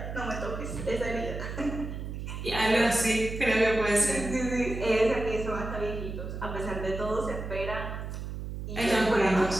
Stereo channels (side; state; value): right; noise; hum, 6 dB below the sound